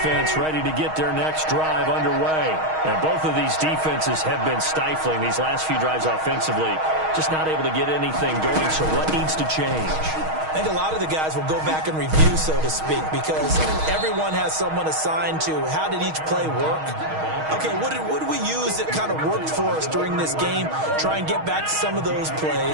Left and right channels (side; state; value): left; late; 6.4 ms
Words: ready to get their next drive underway. And both of these defenses have been stifling these last few drives offensively. Just not able to get anything going, so what needs to change? I think a lot of the guys will go back and review, so to speak, because everyone has someone assigned to how did each play work. Okay, what did we use that kind of worked for us during this game? Try and get back to some of those